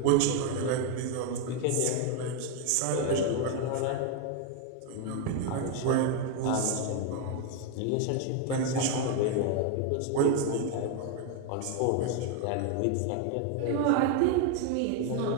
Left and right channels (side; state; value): both; different; correlation 0.01